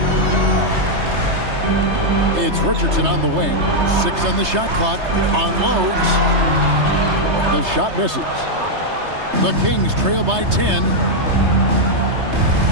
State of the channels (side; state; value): left; late; 3.3 ms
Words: It's Richardson on the wing. 6 on the shot clock. Unloads. The shot misses. The Kings trail by 10.